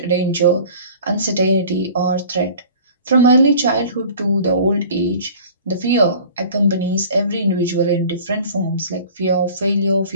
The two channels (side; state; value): both; inverted; correlation -0.45